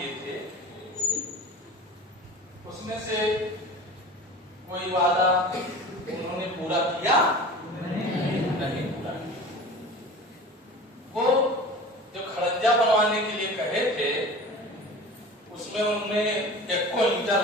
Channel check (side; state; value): both; normal; correlation 0.37